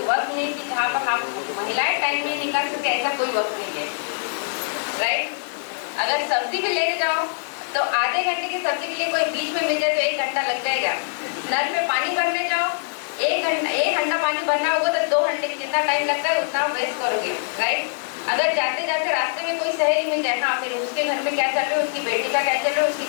वक्त नहीं कि जहाँ पर हम महिलाएं टाइम नहीं निकाल सकते, ऐसा कोई वक्त नहीं है, राइट? अगर सब्जी भी लेने जाओ तो आधे घंटे की सब्जी के लिए कोई बीच में मिल जाए तो 1 घंटा लग जाएगा। नल में पानी भरने जाओ, 1 घंटा पानी भरना होगा तो 2 घंटे जितना टाइम लगता है उतना वेस्ट करोगे, राइट? अगर जाते जाते रास्ते में कोई सहेली मिल जाए, हाँ फिर उसके घर में क्या चल रहा है, उसकी बेटी का क्या चल रहा है,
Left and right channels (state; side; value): silent; right; digital silence